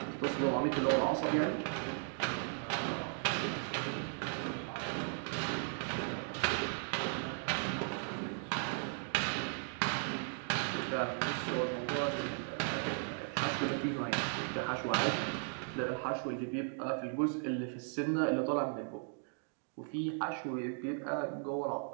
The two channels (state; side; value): silent; left; 53 dB below the other